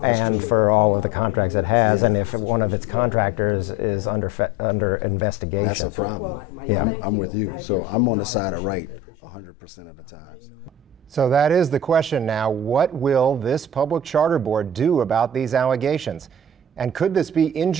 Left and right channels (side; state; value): both; normal; correlation 0.37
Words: and for all of the contracts it has, and if one of its contractors is under investigation. That's a problem. Yeah, I'm with you. So I'm on the side of right 100% of the time. So that is the question now. What will this public charter board do about these allegations? And could this be